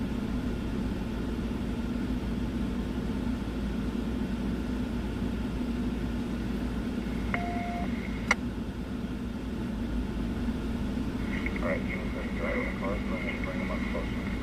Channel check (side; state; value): both; identical; correlation 1.00